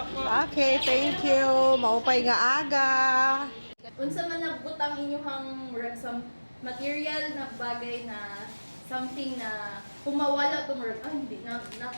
Okay, thank you. Maupay nga aga. Unsa man nagbutang inyong some material na bagay na something na kung mawala to murag hindi na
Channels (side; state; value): both; inverted; correlation -1.00